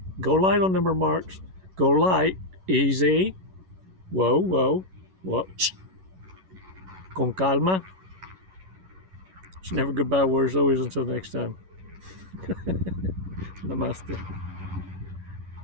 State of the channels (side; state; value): left; late; 11 ms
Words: Go light on them remarks. Go light. Easy. Whoa. Con calma. It's never goodbye words, always until next time. Namaste.